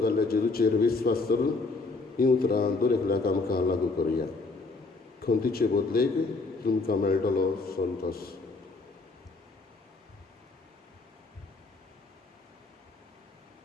जाल्ल्या जेजूचेर विस्वास करून हीं उतरां दर एकल्याक आमकां लागू करुया. खोंतीचे बदलेक तुमकां मेळटलो संतोश.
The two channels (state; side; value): quieter; right; 3.7 dB